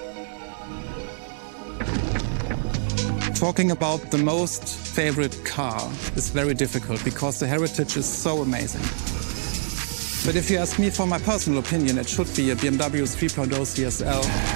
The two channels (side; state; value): left; silent; digital silence